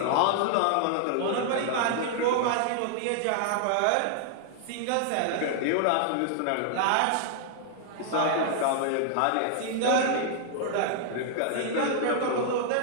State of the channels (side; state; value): both; different; correlation -0.01